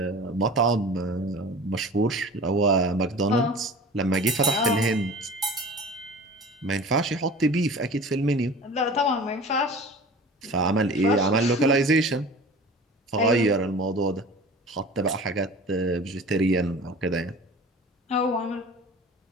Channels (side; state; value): both; normal; correlation 0.40